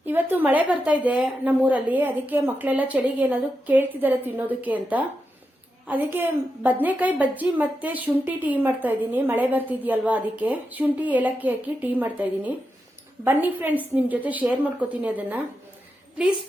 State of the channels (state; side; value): normal; both; correlation 0.87